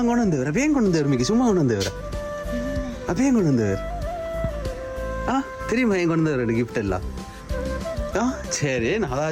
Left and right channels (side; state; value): both; identical; correlation 1.00